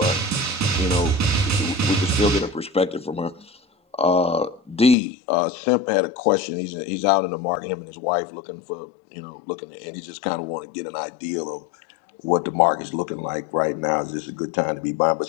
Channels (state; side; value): drops out; right; at 5.0 s